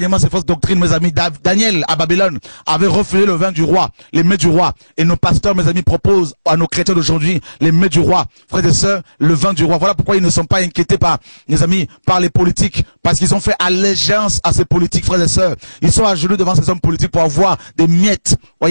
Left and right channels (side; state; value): both; inverted; correlation -1.00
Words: ces fausses doctrines, mes amis. Daniel, à Babylone, avait refusé le vin du roi, les mets du roi. Et nos pasteurs, mes amis, proposent à nos chrétiens d'aujourd'hui les mets du roi. Frères et sœurs, le vin du roi. Voilà pourquoi ils ne sont pas inquiétés par, mes amis, par les politiques. Parce qu'ils ont fait allégeance à ces politiques, frères et sœurs. Ils sont à genoux devant ces hommes politiques pour avoir des miettes,